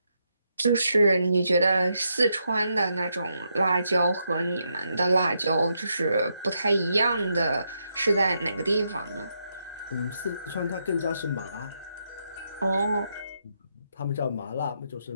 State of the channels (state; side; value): inverted; both; correlation -0.81